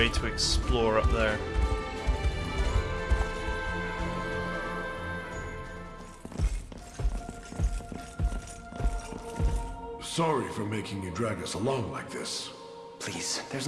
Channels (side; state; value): both; identical; correlation 1.00